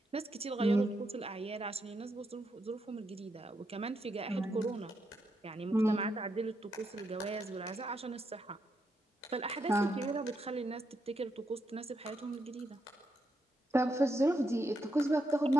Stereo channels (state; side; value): normal; both; correlation 0.81